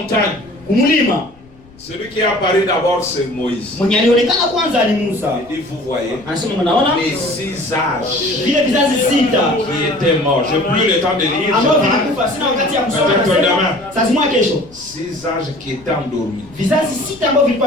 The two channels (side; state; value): left; noise; rumble, 25 dB below the sound